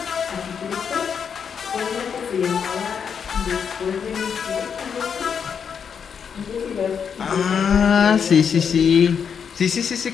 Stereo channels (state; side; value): quieter; right; 7.0 dB